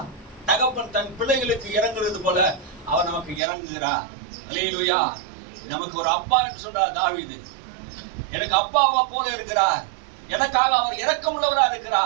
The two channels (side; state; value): left; drops out; at 3.4 s